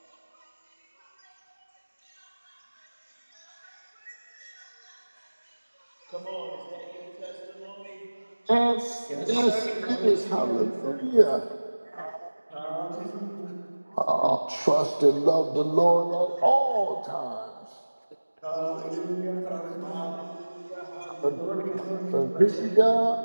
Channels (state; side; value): inverted; both; correlation -1.00